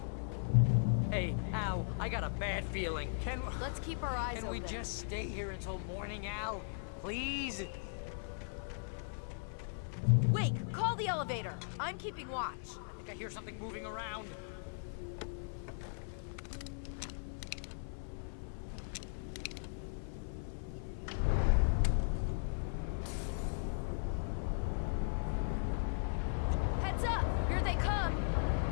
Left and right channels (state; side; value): silent; right; 52 dB below the other